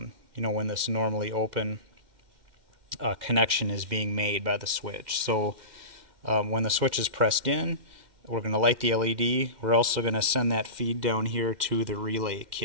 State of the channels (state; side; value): late; left; 2.1 ms